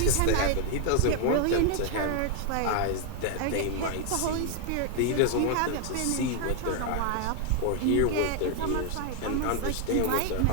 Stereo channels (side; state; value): both; different; correlation 0.00